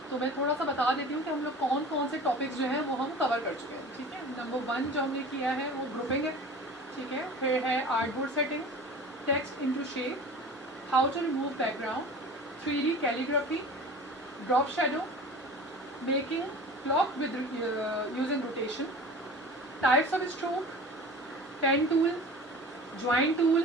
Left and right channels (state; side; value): normal; both; correlation 0.38